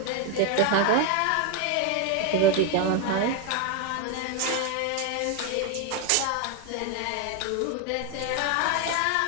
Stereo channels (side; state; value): both; different; correlation 0.01